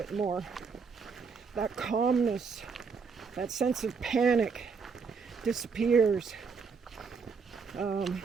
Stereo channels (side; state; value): left; quieter; 5.4 dB